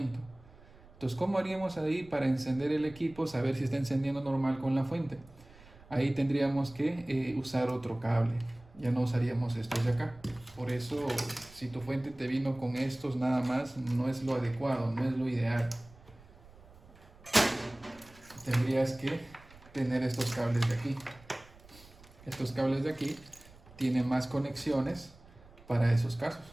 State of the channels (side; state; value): right; noise; rumble, 23 dB below the sound